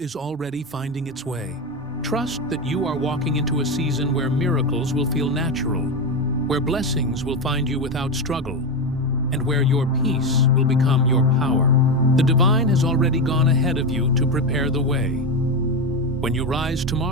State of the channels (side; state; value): both; normal; correlation 0.14